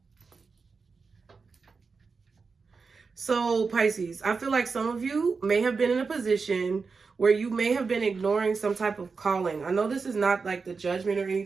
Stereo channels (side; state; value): left; quieter; 4.8 dB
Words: So, Pisces, I feel like some of you may have been in a position where you may have been ignoring some type of calling. I know this is not like the judgment or